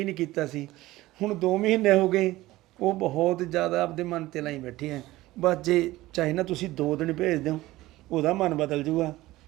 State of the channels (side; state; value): left; quieter; 17.6 dB